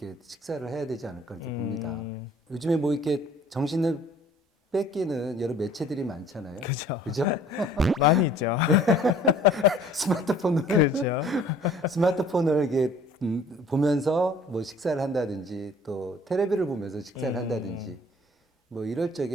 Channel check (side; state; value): both; normal; correlation 0.53